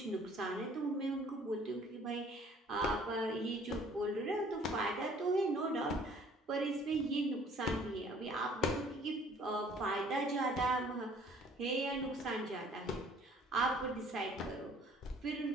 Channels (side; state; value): both; normal; correlation 0.56